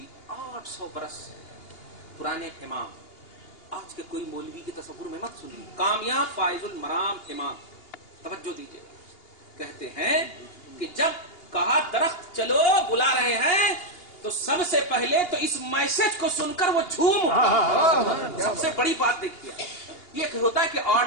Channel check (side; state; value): right; late; 2.8 ms